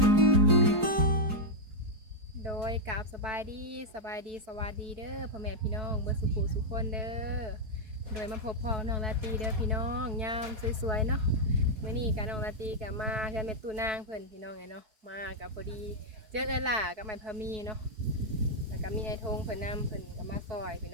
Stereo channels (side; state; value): left; late; 4.7 ms